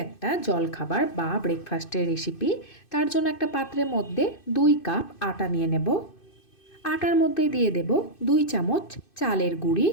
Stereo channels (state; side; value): late; right; 2.6 ms